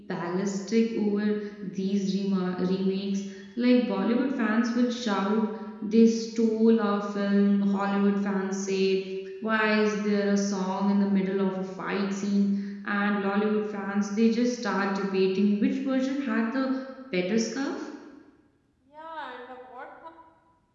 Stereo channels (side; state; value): both; identical; correlation 1.00